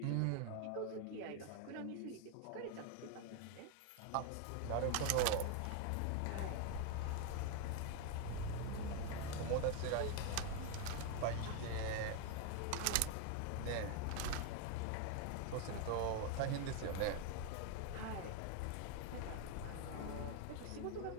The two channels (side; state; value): both; different; correlation 0.01